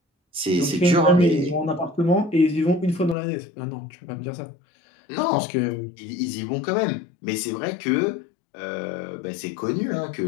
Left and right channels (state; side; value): drops out; right; at 3.2 s